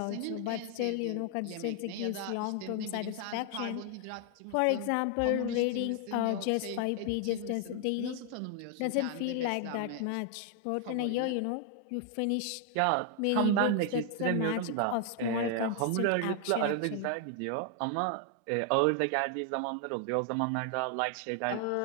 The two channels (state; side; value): different; both; correlation 0.00